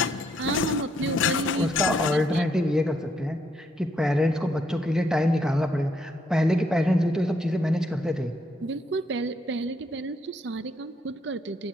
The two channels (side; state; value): both; normal; correlation 0.74